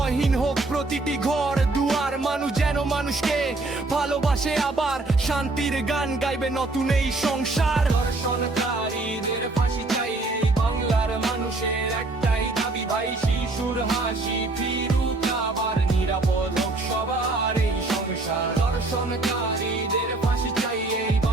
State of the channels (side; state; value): left; quieter; 3.2 dB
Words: হোক প্রতিটি ঘর দুয়ার। মানুষ যেন মানুষকে ভালোবাসে, আবার শান্তির গান গাইবে নতুন এই সংসার। ধর্ষণকারীদের ফাঁসি চাই, এই বাংলার মানুষের একটাই দাবি ভাই। শিশুর হাসি ফিরুক, আবার নিরাপদ হোক সবার এই সংসার। ধর্ষণকারীদের ফাঁসি চাই, এই